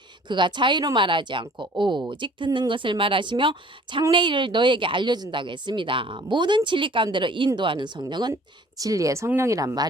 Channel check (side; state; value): both; normal; correlation 0.52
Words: 그가 자유로 말하지 않고 오직 듣는 것을 말하시며 장래일을 너에게 알려준다고 했습니다. 모든 진리 가운데로 인도하는 성령은 진리의 성령이란